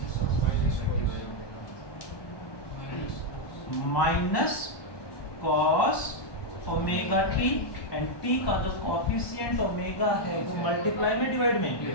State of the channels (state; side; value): late; right; 1.2 ms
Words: minus cos omega t and t का जो कोफिशिएंट ओमेगा है वो मल्टीप्लाई में डिवाइड में,